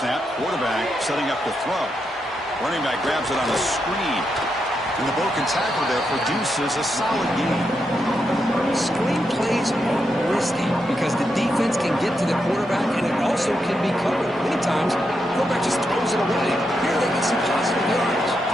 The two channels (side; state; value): both; normal; correlation 0.83